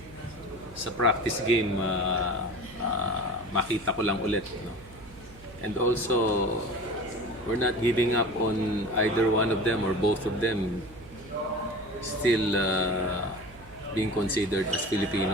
sa practice game, makita ko lang ulit. No? And also, we're not giving up on either one of them or both of them still being considered as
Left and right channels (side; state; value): right; noise; hum, 21 dB below the sound